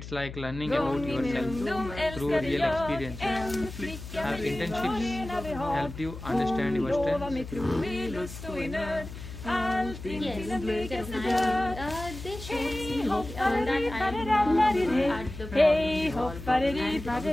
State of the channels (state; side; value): noise; left; hum, 11 dB below the sound